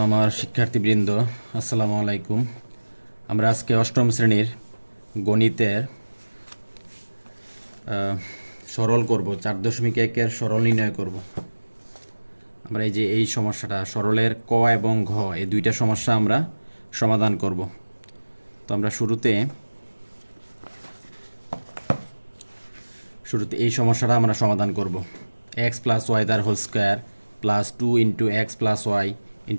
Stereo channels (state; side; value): inverted; both; correlation -1.00